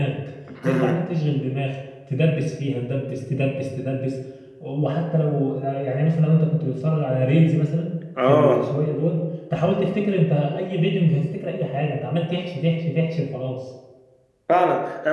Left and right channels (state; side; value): identical; both; correlation 1.00